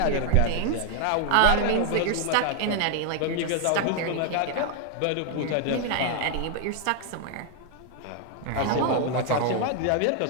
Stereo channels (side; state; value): both; different; correlation 0.00